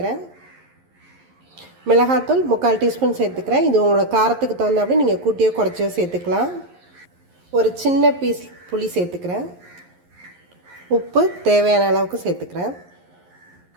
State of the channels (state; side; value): late; left; 11 ms